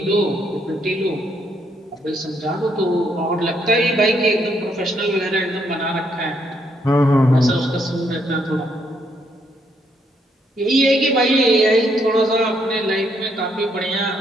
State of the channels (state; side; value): normal; both; correlation 0.73